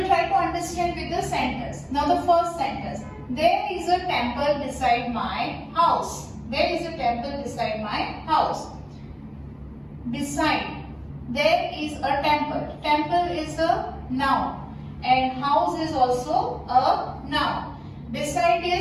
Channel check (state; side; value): identical; both; correlation 1.00